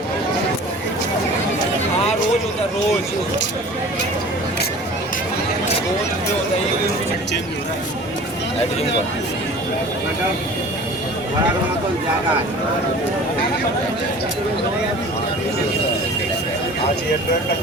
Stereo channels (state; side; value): normal; both; correlation 0.43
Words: हाँ, रोज होता है, रोज होता है, ये चेंज हो रहा